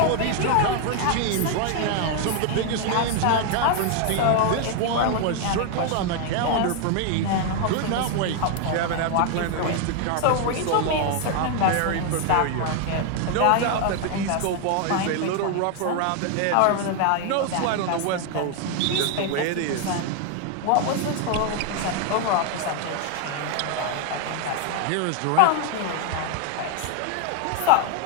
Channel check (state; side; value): different; both; correlation 0.00